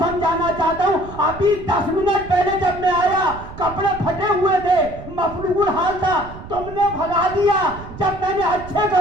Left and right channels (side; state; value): right; noise; rumble, 14 dB below the sound